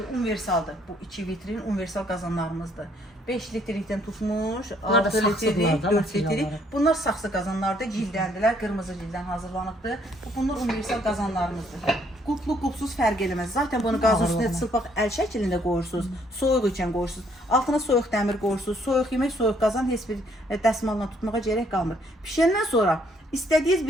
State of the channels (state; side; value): normal; both; correlation 0.66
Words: Universaldır. Bu 2 vitrin universal qazanlarımızdır. 5 litrlikdən tutmuş, 6 litrlik, 4 litrlik. Bunlar saxsı qazanlardır, cildəndirlər, qırmızı cildən hazırlanıbdır. Bunlar universal qazanlarımızdır. Qulplu, qulpsuz fərq eləməz. Zaten bunu qazın üstünə çılpaq əl şəklində qoyursunuz, soyuq ikən qoyursunuz. Altına soyuq dəmir qoyursunuz, soyuq yemək, soyuq qazan heç bir dəsmalla tutmağa gərək qalmır. Pişəndən sonra istədiyiniz